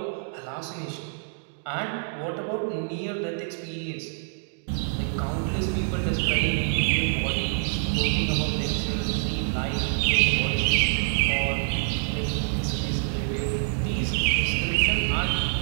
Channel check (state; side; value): silent; left; 57 dB below the other